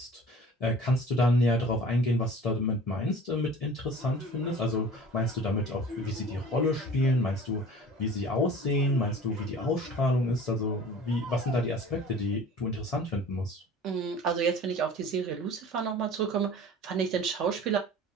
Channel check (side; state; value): both; normal; correlation 0.43